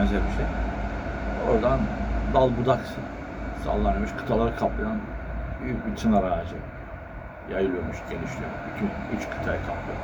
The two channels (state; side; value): identical; both; correlation 1.00